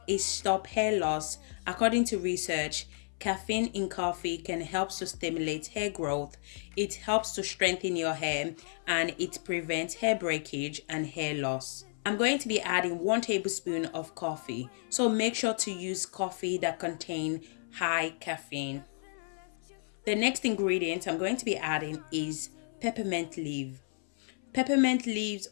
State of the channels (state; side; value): silent; right; 56 dB below the other